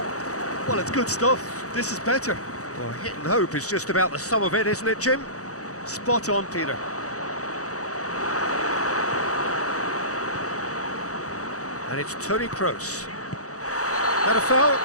Well, it's good stuff. This is better. Well, hit and hope is just about the sum of it, isn't it, Jim? Spot on, Peter. And it's Toni Kroos. Had a foul?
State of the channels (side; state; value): right; late; 0.66 ms